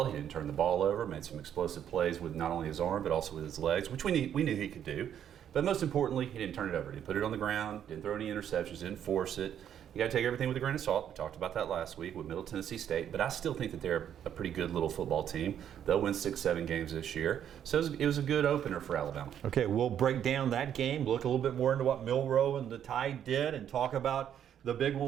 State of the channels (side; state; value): left; quieter; 9.6 dB